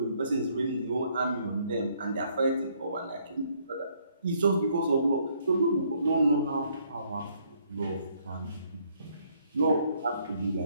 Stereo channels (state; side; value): inverted; both; correlation -0.68